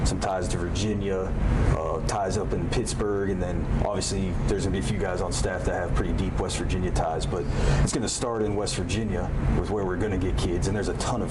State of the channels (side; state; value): both; identical; correlation 1.00